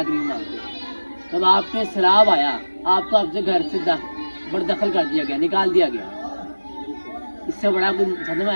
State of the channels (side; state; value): both; inverted; correlation -1.00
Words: مانگتے. جب آپ پہ سیلاب آیا, آپ کو آپ سے گھر سے بردخل کر دیا گیا, نکال دیا گیا, اس سے بڑا کوئی صدمہ